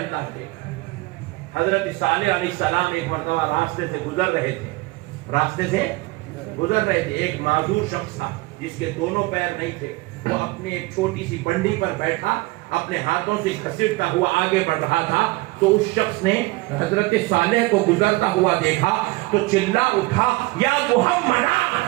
کے حضرت صالح علیہ السلام ایک مرتبہ راستے سے گزر رہے تھے ایک معذور شخص تھا جس کے دونوں پیر نہیں تھے وہ اپنے ایک چھوٹی سی بنڈی پر بیٹھا اپنے ہاتھوں سے گھسیٹتا ہوا آگے بڑھ رہا تھا تو اس شخص نے حضرت صالح کو گزرتا ہوا دیکھا تو چلا اٹھا یا محمدہ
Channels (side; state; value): left; quieter; 22.4 dB